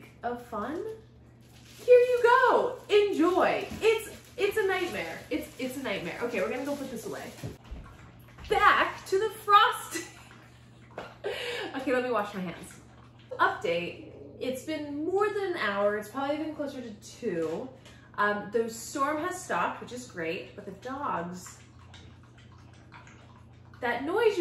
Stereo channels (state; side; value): identical; both; correlation 1.00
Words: of fun. Here you go, enjoy. It's a nightmare. It's a nightmare. Okay, we're gonna go put this away. Back to the frosting. Okay, let me wash my hands. Update, it's been more than an hour. It's probably been closer to 2. The storm has stopped, which is great, but the dogs, that noise